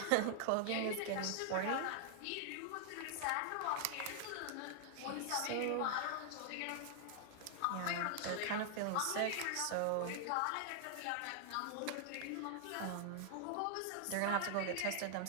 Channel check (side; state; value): both; different; correlation 0.00